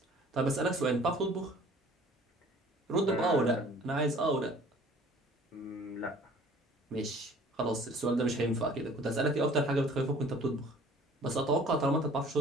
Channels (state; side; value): normal; both; correlation 0.51